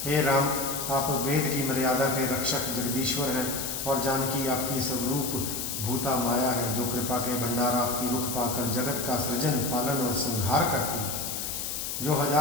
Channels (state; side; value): noise; left; hiss, 4 dB below the sound